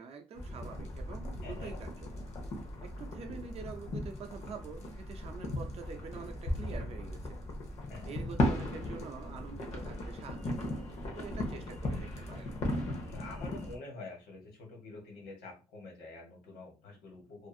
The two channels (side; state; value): both; normal; correlation 0.72